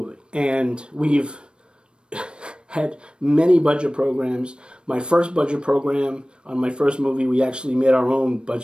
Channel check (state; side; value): late; left; 0.055 ms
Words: And we've had many budget programs. My first budget program on my first movie, we actually made our own